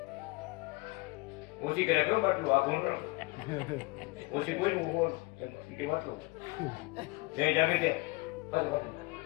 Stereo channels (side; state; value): right; quieter; 24.8 dB